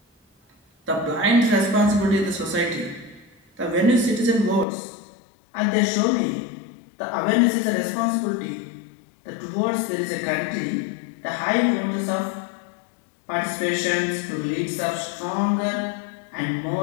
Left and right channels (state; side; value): drops out; right; at 4.7 s